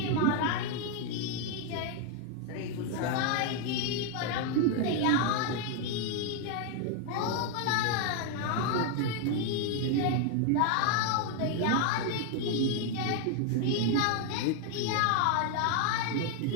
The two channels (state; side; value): different; both; correlation 0.01